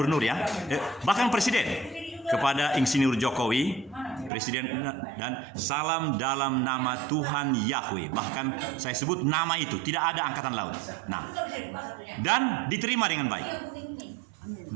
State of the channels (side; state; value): left; drops out; at 4.3 s